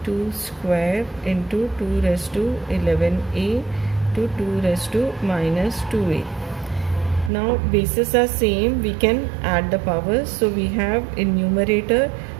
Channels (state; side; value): drops out; left; at 7.3 s